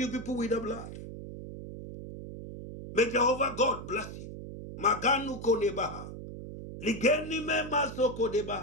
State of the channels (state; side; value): noise; right; hum, 10 dB below the sound